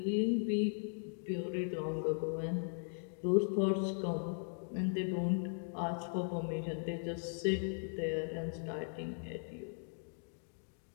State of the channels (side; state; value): right; silent; digital silence